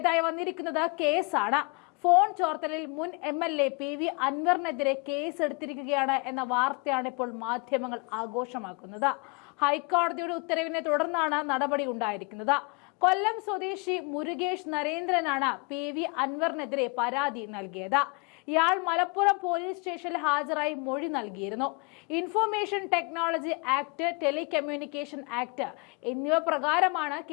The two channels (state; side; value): quieter; right; 31.1 dB